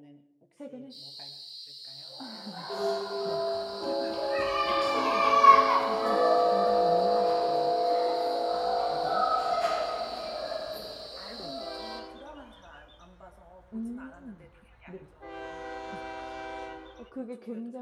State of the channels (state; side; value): identical; both; correlation 1.00